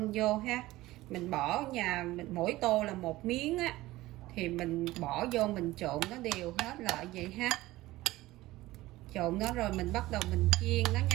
vô ha. Mình bỏ mình mỗi tô là 1 miếng á, thì mình bỏ vô mình trộn nó đều hết lại vậy ha. Trộn nó rồi mình bắt đầu mình chiên nó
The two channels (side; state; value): left; quieter; 17.8 dB